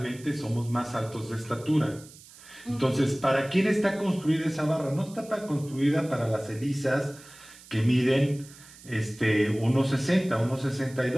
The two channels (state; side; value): noise; right; hiss, 21 dB below the sound